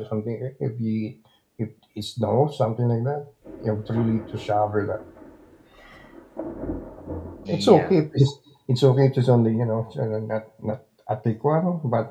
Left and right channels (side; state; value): both; identical; correlation 1.00